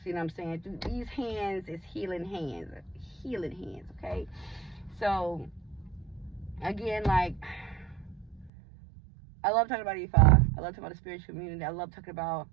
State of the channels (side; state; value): left; drops out; at 8.5 s